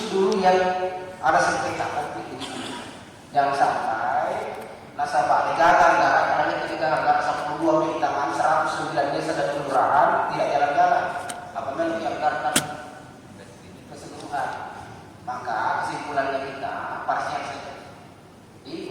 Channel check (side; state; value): both; identical; correlation 1.00